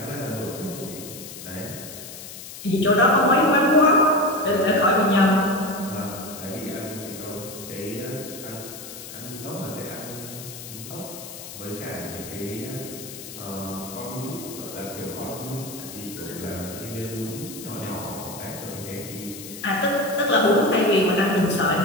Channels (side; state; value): left; noise; hiss, 12 dB below the sound